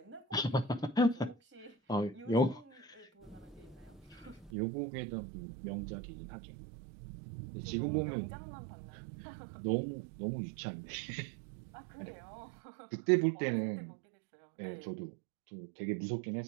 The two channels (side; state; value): left; drops out; at 4.5 s